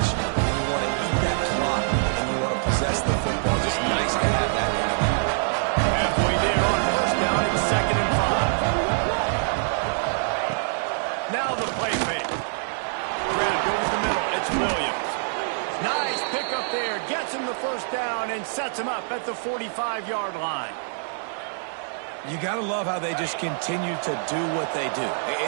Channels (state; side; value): silent; left; digital silence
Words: And you want to eat that clock and you want to possess the football. Just nice to have that kind of thing. Halfway there on first down, it's 2nd and 5. Now the play fake. Grab over the middle. It's Williams. Nice pickup there. Gets him the first down and sets him up at the 45-yard line. You got to love how they just continue to do what they do.